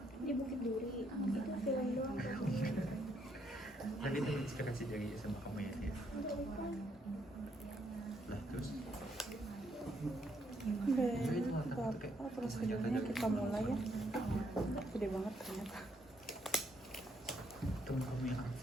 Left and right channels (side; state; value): both; normal; correlation 0.72